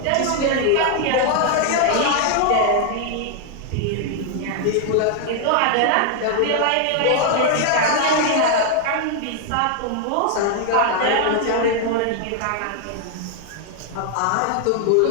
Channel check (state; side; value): different; both; correlation 0.00